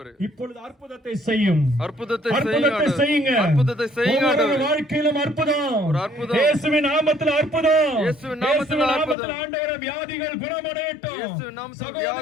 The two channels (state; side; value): drops out; right; at 9.2 s